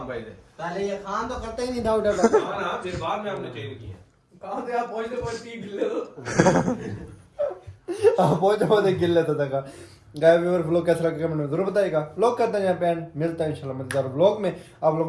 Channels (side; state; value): both; identical; correlation 1.00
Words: भाई से पहले ये खान तो करते ही नहीं था उधर हां फिर बाद में हमने चेंज किया कहां से आप पहुंचते पहुंचते गिल्ले हो बहुत बहुत गिल लेता था का गाय व्यूअर व्लॉग कैसा लगा कमेंट में जरूर बताइएगा व्लॉग करते हैं यहाँ पे एंड मिलता है इंशाल्लाह मजेदार व्लॉग में आप